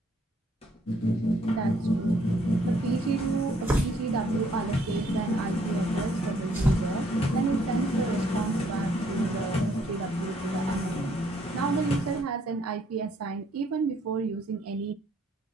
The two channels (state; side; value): normal; both; correlation 0.67